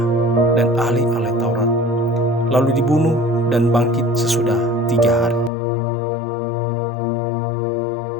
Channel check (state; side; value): drops out; right; at 5.5 s